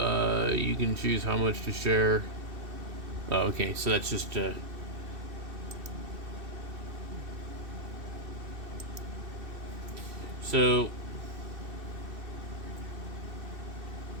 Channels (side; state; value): left; late; 2.7 ms